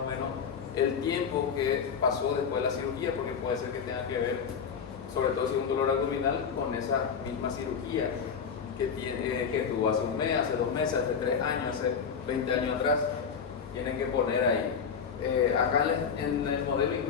o menos el tiempo que pasó después de la cirugía, porque puede ser que tenga que ver, sobre todo si es un dolor abdominal, con esa misma cirugía que tuvo hace un mes, hace 2 meses, hace 3 años, hace 20 años atrás. Tienen que poner ahí. Acá en el modelo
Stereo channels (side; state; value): right; quieter; 6.6 dB